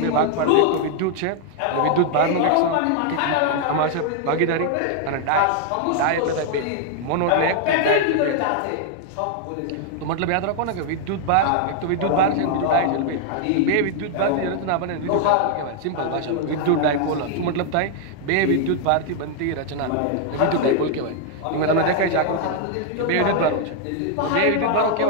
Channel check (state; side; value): different; both; correlation 0.00